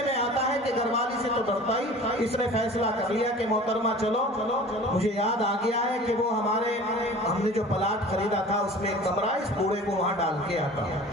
میں آتا ہے کہ گھر والی سے تو ڈرتا ہی. اس نے فیصلہ کر لیا کہ محترمہ چلو. مجھے یاد آ گیا ہے کہ وہ ہم نے جو پلاٹ خریدا تھا اس میں ایک کمرہ، اس بوڑھے کو وہاں ڈال کے آتا.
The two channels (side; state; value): both; normal; correlation 0.42